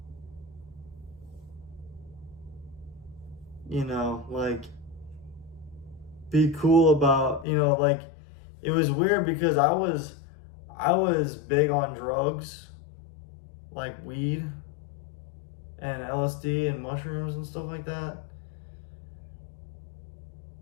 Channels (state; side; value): drops out; right; at 7.5 s